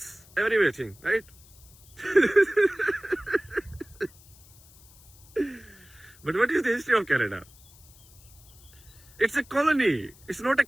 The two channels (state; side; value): noise; left; hiss, 24 dB below the sound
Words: everything, right? But what is the history of Canada? It's a colony. It's not a